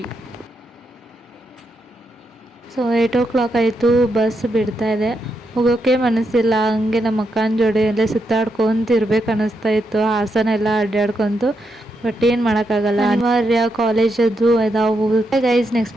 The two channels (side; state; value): both; normal; correlation 0.82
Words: ಸೊ 8 o'clock ಆಯಿತು. ಬಸ್ ಬಿಡ್ತಾ ಇದೆ. ಹೋಗೋಕ್ಕೆ ಮನಸ್ಸಿಲ್ಲ. ಹಂಗೆ ನಮ್ಮ ಅಕ್ಕನ ಜೋಡಿ ಎಲ್ಲ ಸುತ್ತಾಡ್ಕೊಂತ ಇರ್ಬೇಕು ಅನ್ನಿಸ್ತಾ ಇತ್ತು. ಹಾಸನ ಎಲ್ಲ ಅಡ್ಡಾಡ್ಕೊಂತು. ಬಟ್ ಏನು ಮಾಡೋಕ್ಕಾಗಲ್ಲ, ಅನಿವಾರ್ಯ. ಕಾಲೇಜದ್ದು ಇದಾವು. ಗೈಸ್